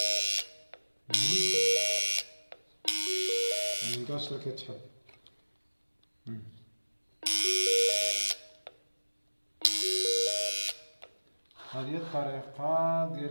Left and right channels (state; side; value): inverted; both; correlation -1.00